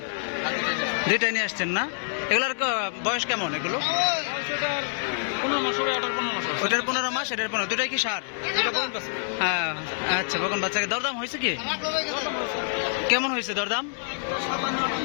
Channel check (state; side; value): silent; right; 60 dB below the other